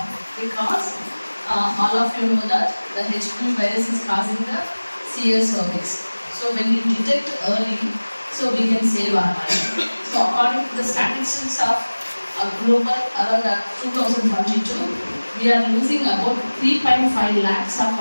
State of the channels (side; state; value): both; inverted; correlation -1.00